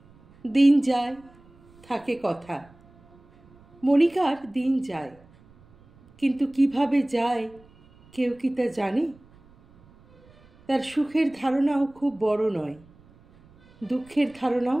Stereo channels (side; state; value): right; noise; rumble, 28 dB below the sound